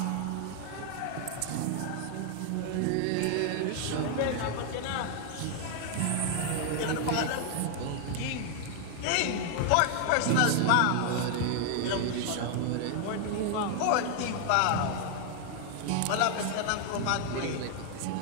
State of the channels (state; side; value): different; both; correlation 0.00